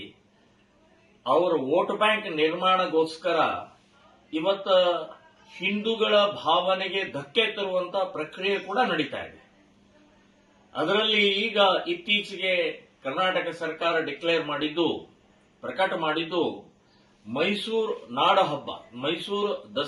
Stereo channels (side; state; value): both; identical; correlation 1.00